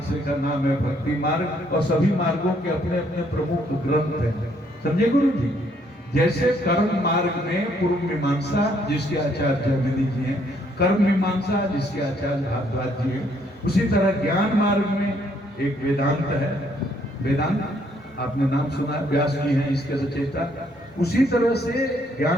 का नाम है भक्ति मार्ग, और सभी मार्गों के अपने अपने प्रमुख ग्रंथ हैं। समझे गुरु जी? जैसे कर्म मार्ग में पूर्व मीमांसा जिसके आचार्य जैमिनी जी हैं, कर्म मीमांसा जिसके आचार्य भारद्वाज जी हैं, उसी तरह ज्ञान मार्ग में एक वेदांत है। वेदांत आपने नाम सुना, व्यास जी हैं इसके रचयिता। उसी तरह से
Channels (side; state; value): both; normal; correlation 0.68